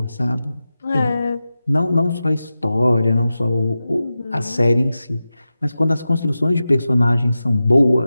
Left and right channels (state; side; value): inverted; both; correlation -0.93